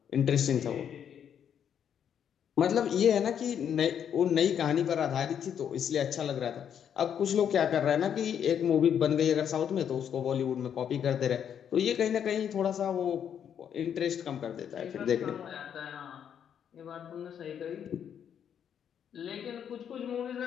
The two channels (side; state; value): right; quieter; 8.6 dB